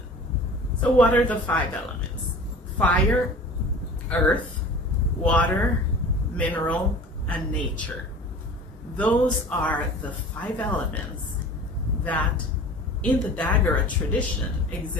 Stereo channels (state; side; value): normal; both; correlation 0.41